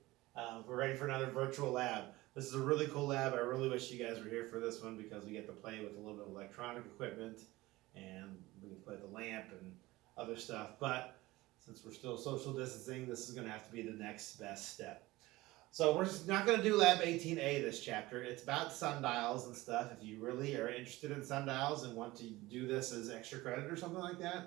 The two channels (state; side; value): quieter; left; 19.3 dB